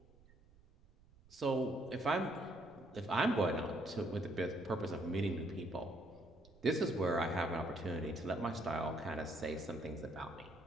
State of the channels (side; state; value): right; noise; rumble, 26 dB below the sound